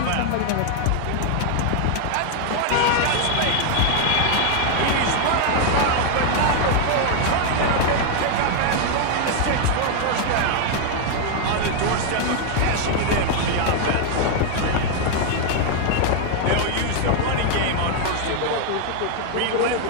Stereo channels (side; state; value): both; different; correlation 0.00